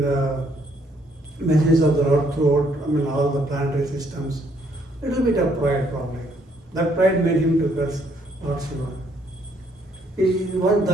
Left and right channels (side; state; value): both; normal; correlation 0.68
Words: the message of the Lord throughout, all the planetary systems. Little bit of pride probably. That pride made him to curse Lord Shiva.